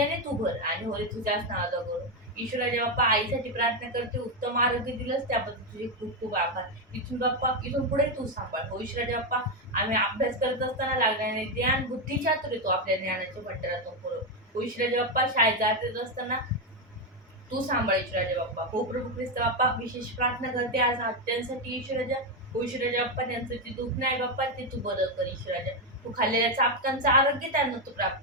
तू भर आणि होय तुझ्याच नावाचा करू. ईश्वराच्या बाप्पा आईसाठी प्रार्थना करते. उत्तम आरोग्य दिलंस त्याबद्दल तुझे खूप खूप आभार. इथून बाप्पा इथून पुढे तू सांभाळ. हो ईश्वराच्या बाप्पा आम्ही अभ्यास करत असताना लागणारे ज्ञान बुद्धी चातुर्य तू आपल्या ज्ञानाच्या भंडारातून पुरव. हो ईश्वराच्या बाप्पा शाळेत जात असताना तू सांभाळ ईश्वराच्या बाप्पा. हो प्रभू ख्रिस्त बाप्पा विशेष प्रार्थना करते आज हत्यांसाठी ईश्वराच्या. हो ईश्वराच्या बाप्पा त्यांचं जे दुःख नाही बाप्पा ते तू बरं कर ईश्वराच्या. तू खाल्लेल्या चापकांचं आरोग्य त्यांना तू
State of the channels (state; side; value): normal; both; correlation 0.06